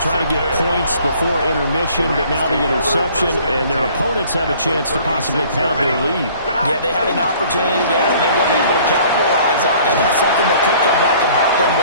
trying to get points before intermission, but now the interception, and their opponents have a chance to possibly pad their lead. Yeah, they had an opportunity there, and they weren't able to capitalize on it. That's something that could come back and haunt them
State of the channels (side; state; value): both; inverted; correlation -0.54